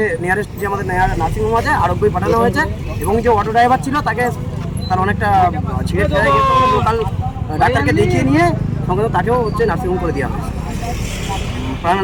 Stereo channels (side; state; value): both; identical; correlation 1.00